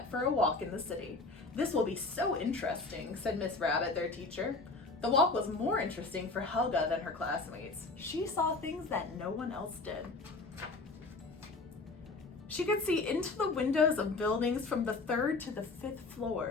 for a walk in the city. "This will be so interesting," said Miss Rabbit, their teacher. The walk was more interesting for Helga than her classmates. She saw things that no one else did. She could see into the windows of buildings from the 3rd to the 5th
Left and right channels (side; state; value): right; quieter; 3.6 dB